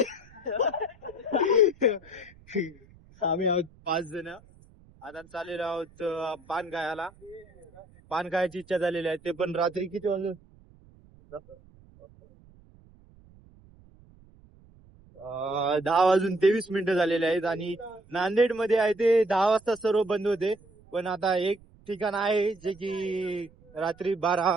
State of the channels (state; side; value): noise; right; rumble, 26 dB below the sound